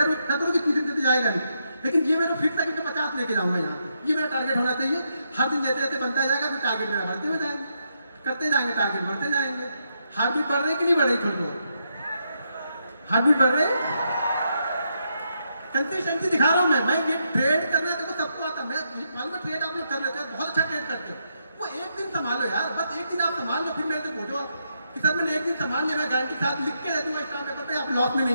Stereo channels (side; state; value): both; inverted; correlation -0.80